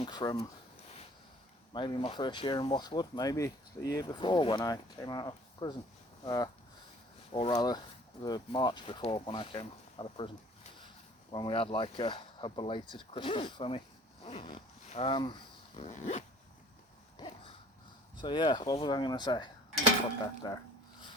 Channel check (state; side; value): normal; both; correlation 0.52